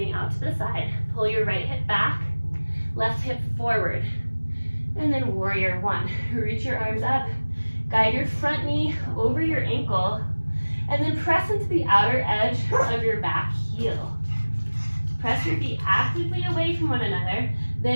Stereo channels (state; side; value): inverted; both; correlation -1.00